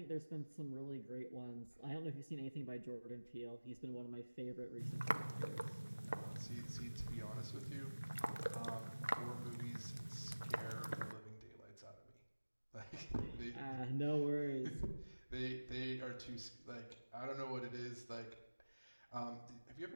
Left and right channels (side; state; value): both; inverted; correlation -1.00